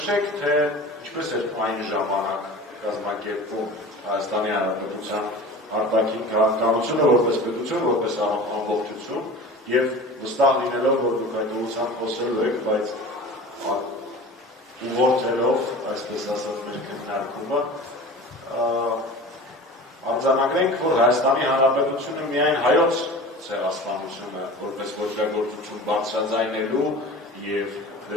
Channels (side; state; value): both; normal; correlation 0.37